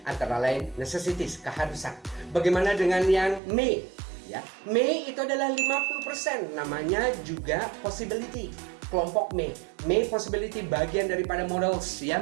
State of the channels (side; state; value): left; drops out; at 3.4 s